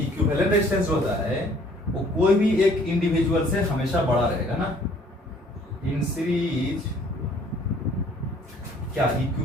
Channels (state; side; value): normal; both; correlation 0.58